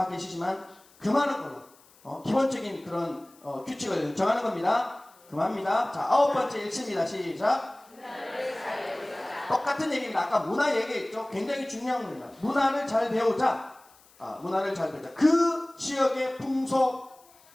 계시지만 금하는 걸로 기본적인 그런 규칙을 정하는 겁니다. 금합니다. 자, 9번째 읽습니다. 시작. 똑같은 얘기입니다. 아까 문화 얘기했죠. 굉장히 중요한 겁니다. 문화를 잘 배우자. 문화를 잘 배우자. 그 지역의 풍속,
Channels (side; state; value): left; noise; hiss, 28 dB below the sound